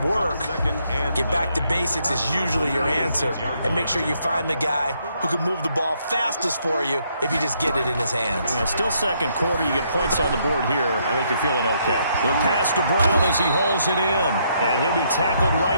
work? Get back to basics is usually your answer. And make sure you find the guy who can move the ball fastest for you if you just get it in his hands. Yeah, still 2nd quarter. You get points on the board here. I think you're feeling okay. The pass to Brown as he hauls it in. And he'll be tackled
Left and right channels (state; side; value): inverted; both; correlation -0.73